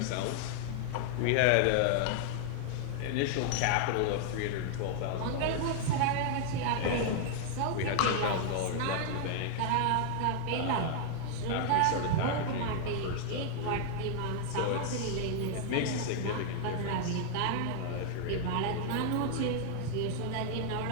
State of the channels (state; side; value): different; both; correlation 0.00